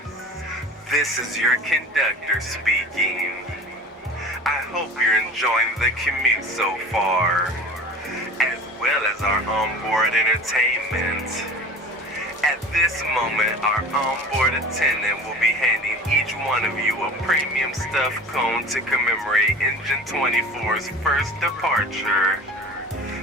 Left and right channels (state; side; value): normal; both; correlation 0.39